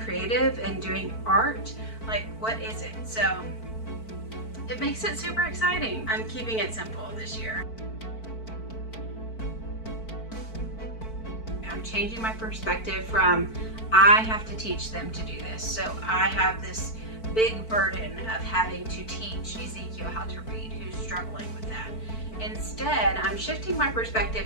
and doing art? Like, what is it? So it makes it super exciting. I'm keeping it simple this year. I'm changing my perspective from I have to teach them to do this. So I have this big burden of having to teach Ezekiel how to read, who's struggling with that. Instead, I'm shifting my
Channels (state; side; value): late; right; 4.5 ms